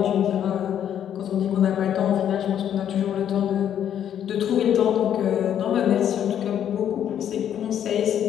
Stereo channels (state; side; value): quieter; right; 9.8 dB